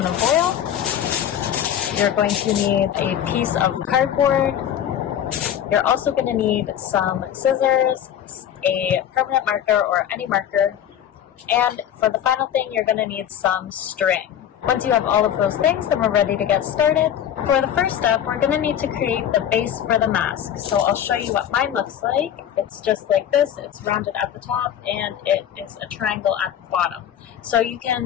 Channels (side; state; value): right; quieter; 9.9 dB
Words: foil. You're going to need a piece of cardboard. You're also going to need some scissors, a permanent marker or any marker, and for the final thing, you're going to need some string. Once you have all of those things, then we're ready to get started. For the first step, we're going to need to create the base for the mask. So I'll show you what mine looks like. It's just like this. It's rounded at the top and it is a triangle at the bottom. So you